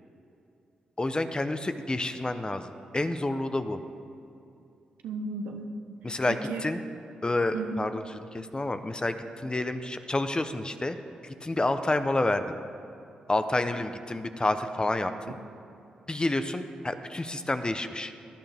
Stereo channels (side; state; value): both; normal; correlation 0.91